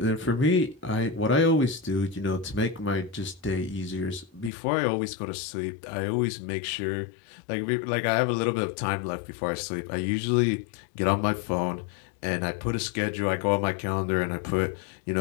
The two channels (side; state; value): right; drops out; at 4.5 s